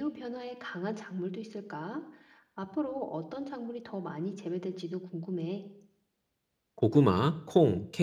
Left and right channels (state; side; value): identical; both; correlation 1.00